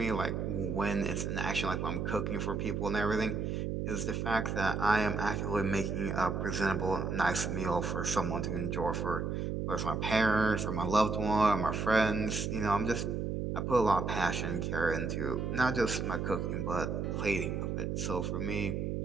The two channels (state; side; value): noise; right; hum, 1 dB below the sound